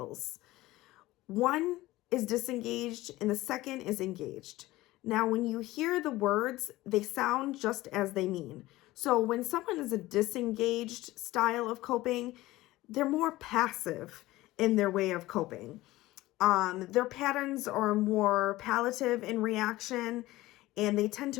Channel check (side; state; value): right; quieter; 17.8 dB